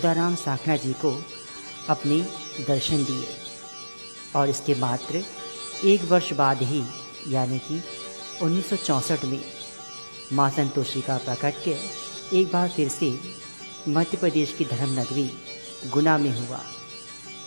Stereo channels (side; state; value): both; inverted; correlation -1.00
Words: साखना जी को अपने दर्शन दिए। और इसके मात्र एक वर्ष बाद ही यानी कि 1964 में माँ संतोषी का प्राकट्य एक बार फिर से मध्य प्रदेश की धर्म नगरी गुना में हुआ,